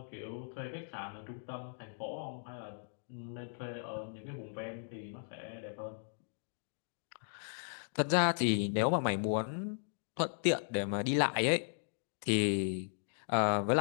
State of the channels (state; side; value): silent; right; digital silence